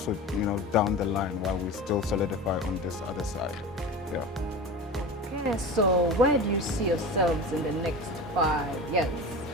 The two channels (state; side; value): normal; both; correlation 0.30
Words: down the line while we still solidify on this other side. Yeah. Okay, so where do you see yourselves in the next 5 years?